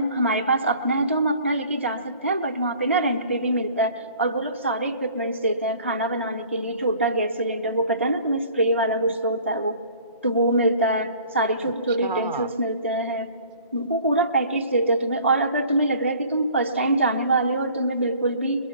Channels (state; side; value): inverted; both; correlation -0.50